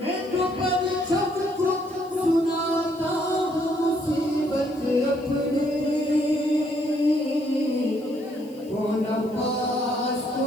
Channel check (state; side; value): noise; left; hiss, 27 dB below the sound